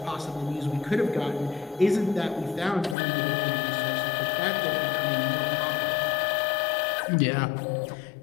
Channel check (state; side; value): drops out; right; at 3.0 s